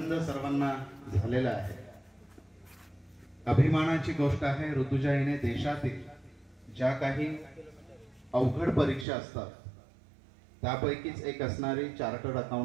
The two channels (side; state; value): left; drops out; at 9.1 s